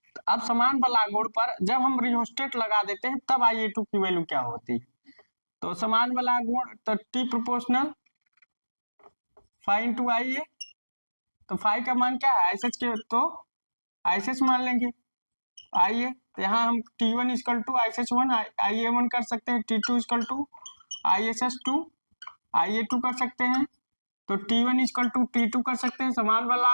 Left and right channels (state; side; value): inverted; both; correlation -1.00